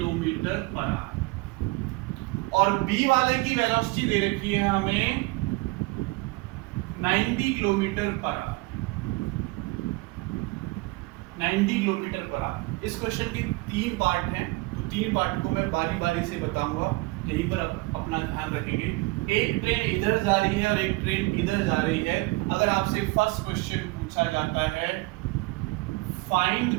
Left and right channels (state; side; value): quieter; left; 23.2 dB